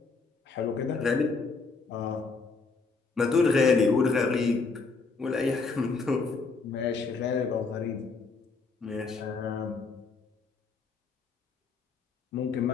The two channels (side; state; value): right; quieter; 4.4 dB